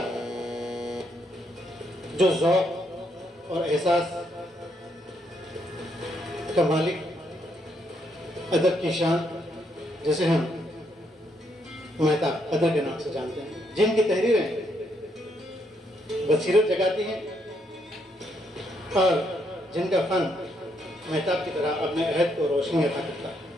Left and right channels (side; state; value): both; normal; correlation 0.75